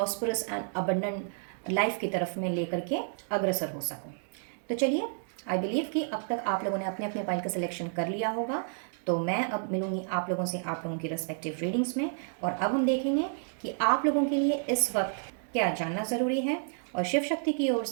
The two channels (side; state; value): left; silent; 58 dB below the other